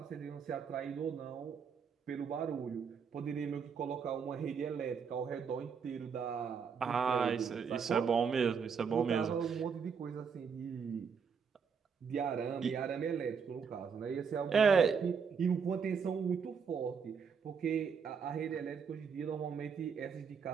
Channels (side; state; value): left; quieter; 6.3 dB